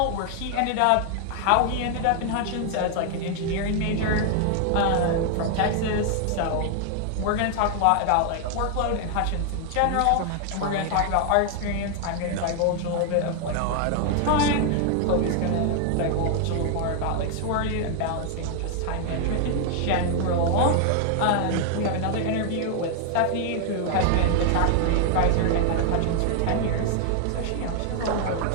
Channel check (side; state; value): both; different; correlation 0.00